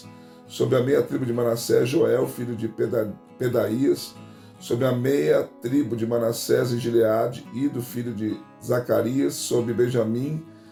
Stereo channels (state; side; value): identical; both; correlation 1.00